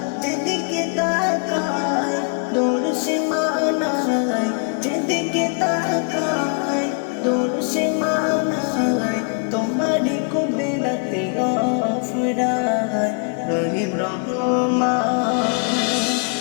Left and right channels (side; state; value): right; quieter; 37.8 dB